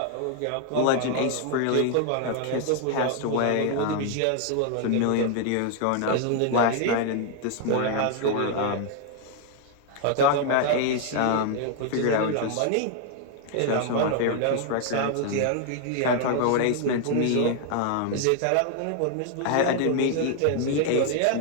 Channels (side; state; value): both; different; correlation 0.00